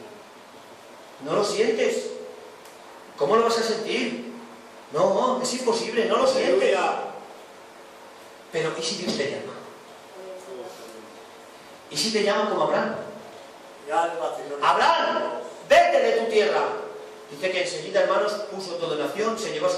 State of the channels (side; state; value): both; identical; correlation 1.00